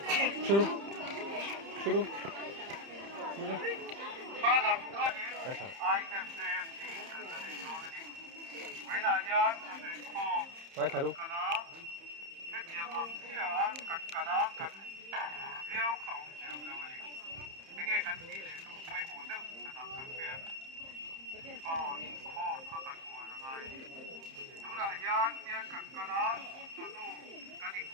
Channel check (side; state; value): left; late; 30 ms